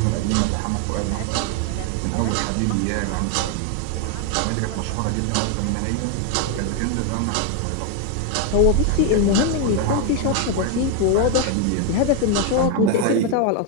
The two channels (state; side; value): different; both; correlation 0.01